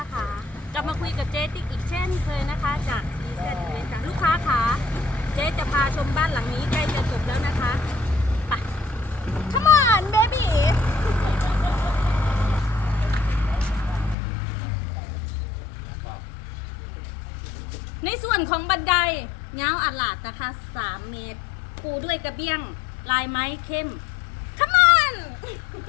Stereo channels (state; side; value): drops out; right; at 14.2 s